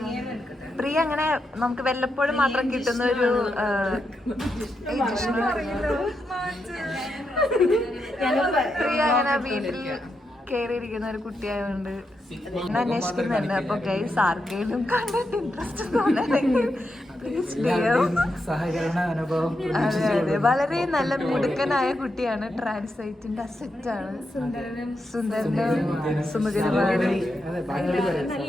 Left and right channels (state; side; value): normal; both; correlation 0.85